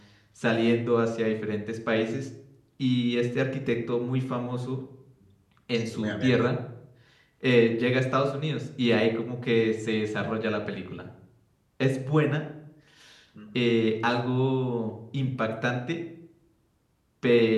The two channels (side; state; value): both; identical; correlation 1.00